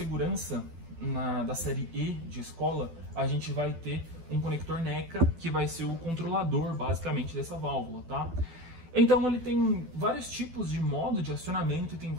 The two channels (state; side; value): late; left; 12 ms